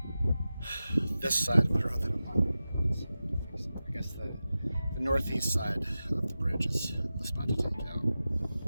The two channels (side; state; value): both; inverted; correlation -0.94